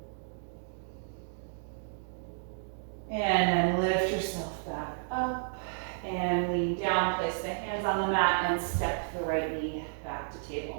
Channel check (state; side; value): silent; left; digital silence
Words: And then lift yourself back up and lean down. Place the hands on the mat and step the right knee back to